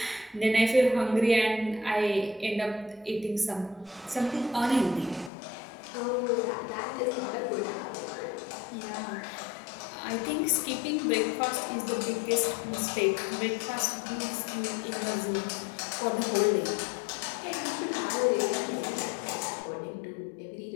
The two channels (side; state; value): right; drops out; at 5.3 s